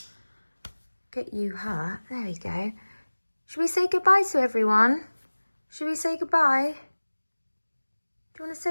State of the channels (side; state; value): both; inverted; correlation -1.00